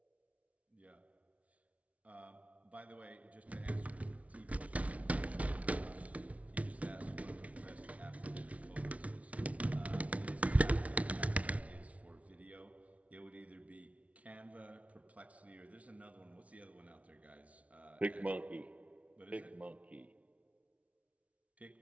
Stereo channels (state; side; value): late; left; 0.066 ms